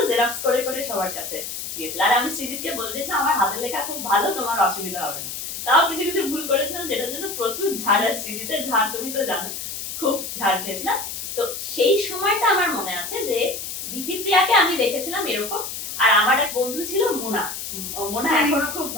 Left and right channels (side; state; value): left; noise; hiss, 7 dB below the sound